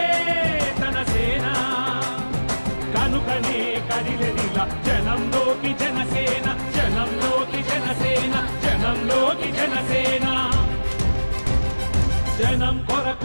తన సేన కనుకనే కదిలెదిలా జనంలోకి జనసేన జనంలోకి జనసేన జనంలోకి జనసేన జనం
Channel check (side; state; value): both; inverted; correlation -1.00